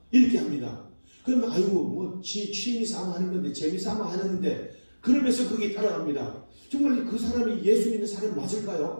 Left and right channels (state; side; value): inverted; both; correlation -1.00